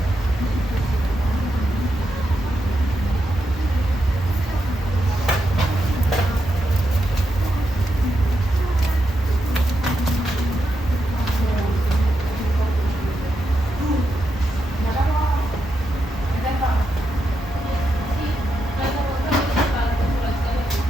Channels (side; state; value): both; normal; correlation 0.85